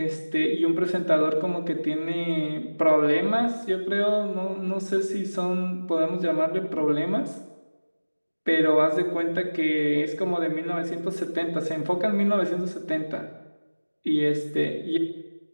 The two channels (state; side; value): inverted; both; correlation -1.00